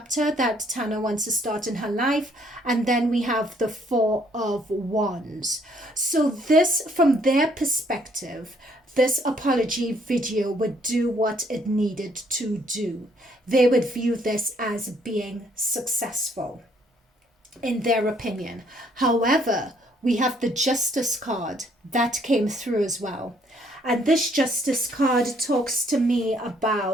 that Tana wants to start in her life. And then we have the 4 of Wands. So this, from their perspective, this apology video would do what it needed to do. They would view this as being successful, in their opinion. However, we have the Justice card that came through as well. And this Justice card talks to me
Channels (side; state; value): both; normal; correlation 0.66